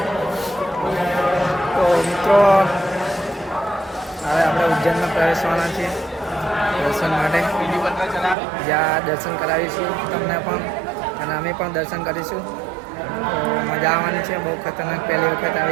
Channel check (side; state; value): left; drops out; at 8.3 s